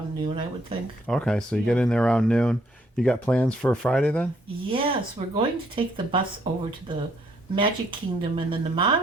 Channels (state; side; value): normal; both; correlation 0.68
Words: noon, I would think. Okay, so you get in there around noon. You got plans for Friday then? Yes, we're going to take the bus over to the Magic Kingdom and then the